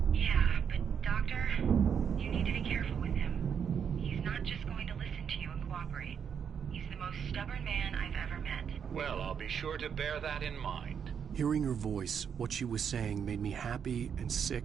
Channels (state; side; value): quieter; left; 7.4 dB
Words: Yeah, but Doctor, you need to be careful with him. He's not just going to listen to you and cooperate. He's the most stubborn man I've ever met. Well, I'll be sure to bear that in mind. Hearing her voice, what she was saying made me happy and